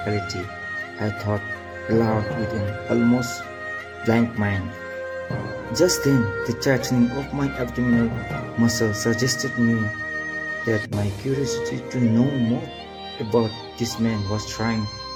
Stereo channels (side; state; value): both; identical; correlation 1.00